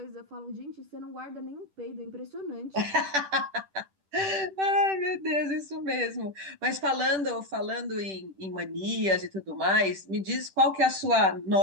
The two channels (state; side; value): late; left; 10 ms